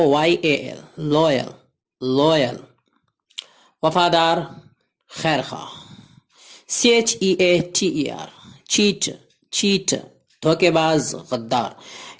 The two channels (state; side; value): identical; both; correlation 1.00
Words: loyal, loyal وفادار خیر خواہ. CHEATER cheat, cheat دھوکے باز غدار.